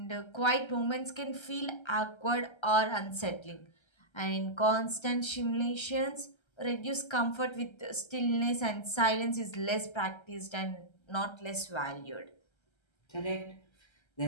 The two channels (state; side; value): late; right; 1.3 ms